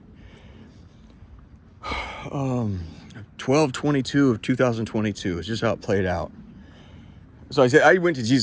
12/22 of 2022. It's just how it played out. So I went to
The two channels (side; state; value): both; identical; correlation 1.00